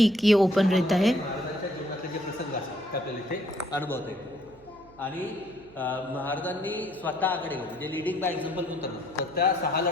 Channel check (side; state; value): right; noise; hum, 25 dB below the sound